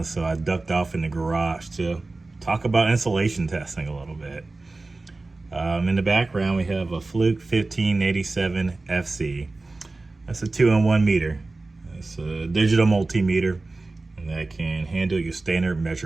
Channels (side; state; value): left; quieter; 3.3 dB